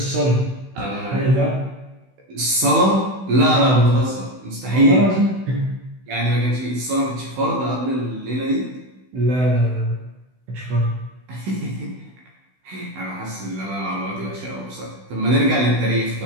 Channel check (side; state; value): left; late; 16 ms